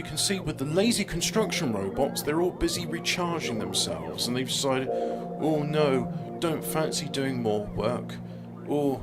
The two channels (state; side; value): identical; both; correlation 1.00